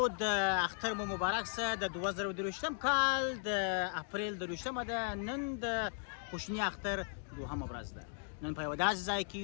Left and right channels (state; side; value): silent; right; digital silence